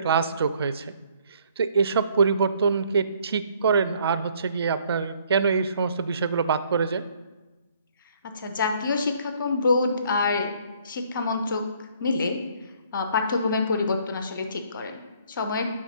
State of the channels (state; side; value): inverted; both; correlation -0.62